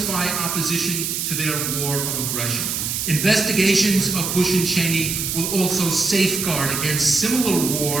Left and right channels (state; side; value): noise; right; hiss, 2 dB below the sound